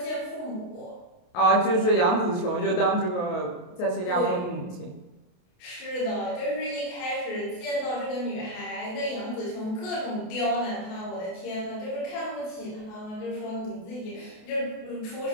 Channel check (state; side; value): late; right; 28 ms